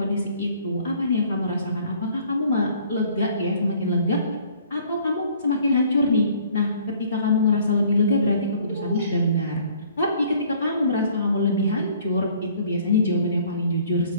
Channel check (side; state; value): both; inverted; correlation -0.57